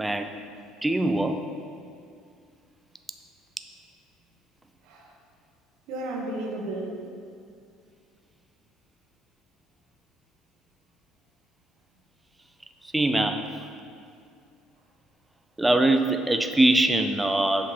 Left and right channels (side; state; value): both; normal; correlation 0.86